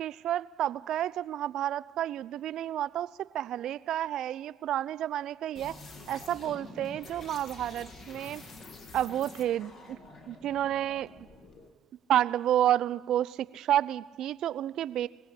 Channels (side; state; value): left; quieter; 11.1 dB